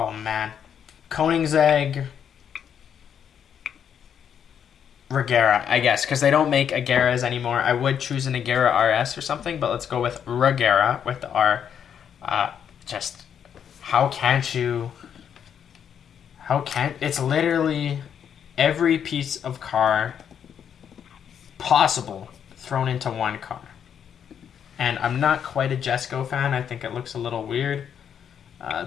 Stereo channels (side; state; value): right; quieter; 8.3 dB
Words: man. Koenigsegg... Regera, I guess, because they don't make Ageras anymore. I would choose an Agera RS or something, but let's go with Regera with the R. It's literally every piece of car possible thrown into one car. And I'm not quite a Jesco fan. I think it looks a little weird.